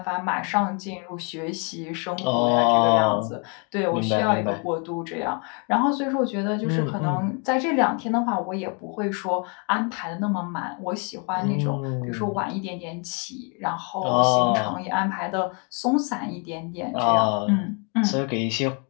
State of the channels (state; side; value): quieter; right; 36.0 dB